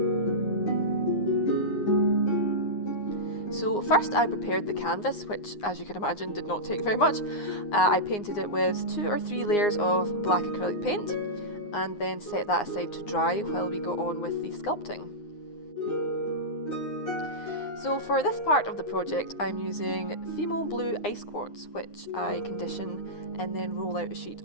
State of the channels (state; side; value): late; right; 9.7 ms